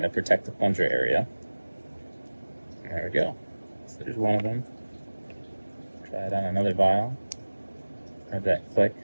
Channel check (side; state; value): both; inverted; correlation -1.00